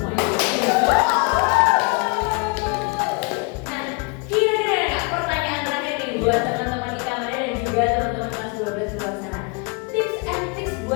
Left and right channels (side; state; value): right; quieter; 32.4 dB